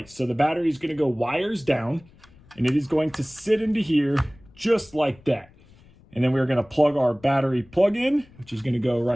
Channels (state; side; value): noise; left; rumble, 26 dB below the sound